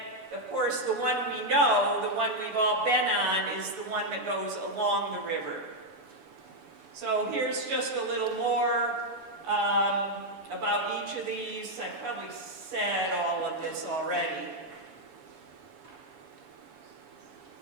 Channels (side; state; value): left; late; 6.9 ms